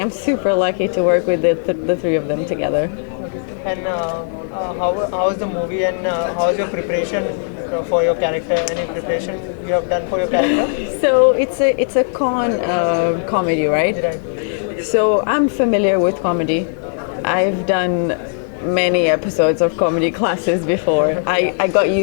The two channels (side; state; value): right; silent; 55 dB below the other